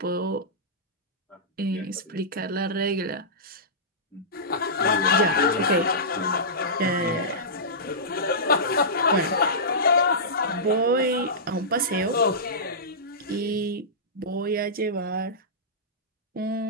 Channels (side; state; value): both; normal; correlation -0.17